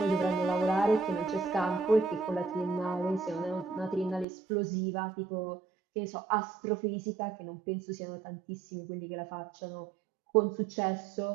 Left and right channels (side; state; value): left; drops out; at 4.2 s